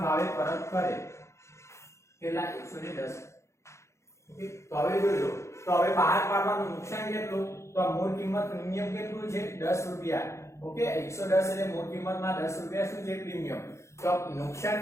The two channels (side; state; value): right; late; 0.14 ms